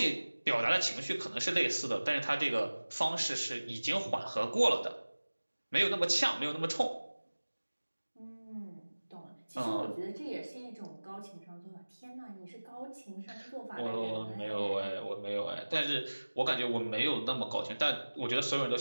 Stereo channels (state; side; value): inverted; both; correlation -1.00